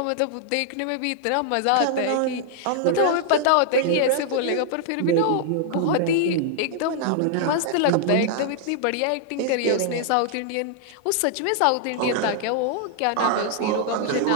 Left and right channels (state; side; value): different; both; correlation -0.01